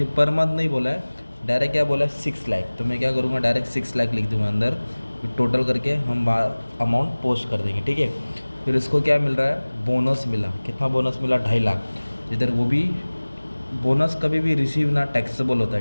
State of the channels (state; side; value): inverted; both; correlation -1.00